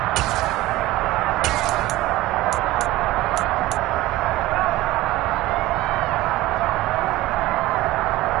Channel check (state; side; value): quieter; left; 17.0 dB